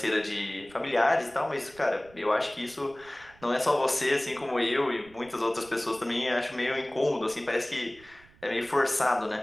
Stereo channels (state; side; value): noise; right; rumble, 26 dB below the sound